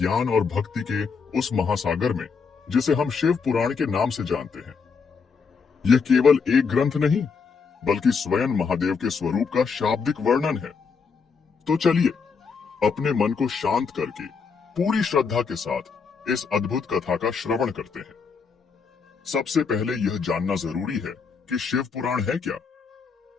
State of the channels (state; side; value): quieter; right; 5.4 dB